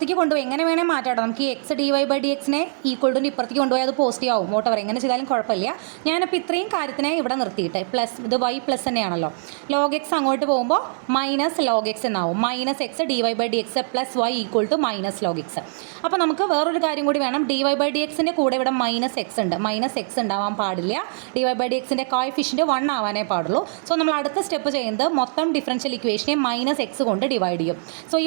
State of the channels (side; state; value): left; silent; digital silence